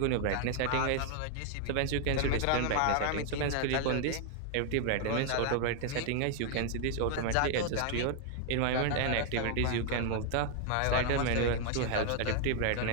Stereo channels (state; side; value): different; both; correlation 0.00